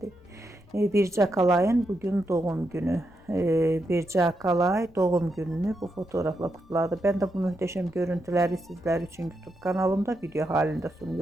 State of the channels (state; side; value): noise; left; rumble, 26 dB below the sound